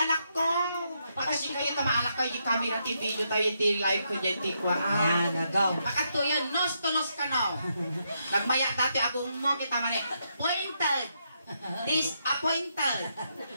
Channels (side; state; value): both; inverted; correlation -0.79